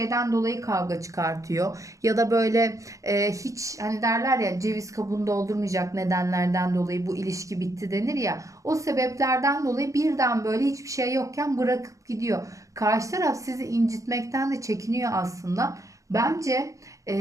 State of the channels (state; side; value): late; left; 0.16 ms